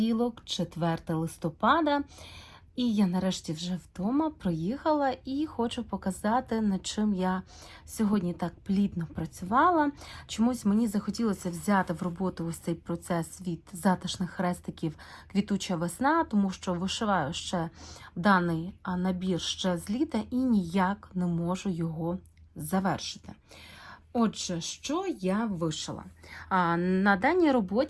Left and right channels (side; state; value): both; identical; correlation 1.00